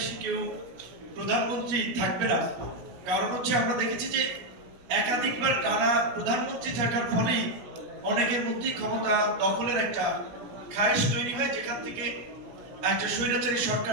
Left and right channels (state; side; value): late; left; 16 ms